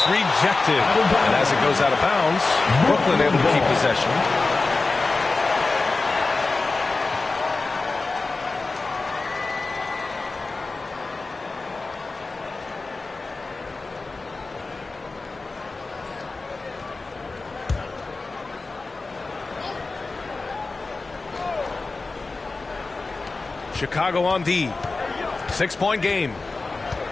rejected. And as it goes out of bounds, Brooklyn able to keep possession. Chicago on D. 6-point game.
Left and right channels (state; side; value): quieter; right; 3.7 dB